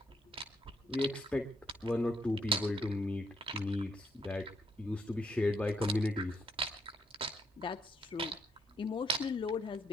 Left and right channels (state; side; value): normal; both; correlation 0.75